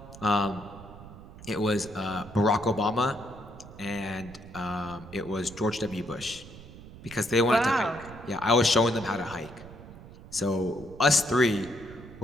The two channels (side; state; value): right; noise; rumble, 17 dB below the sound